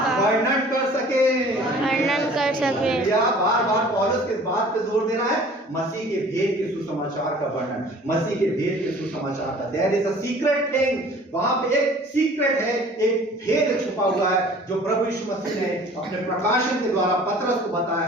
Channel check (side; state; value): both; normal; correlation 0.49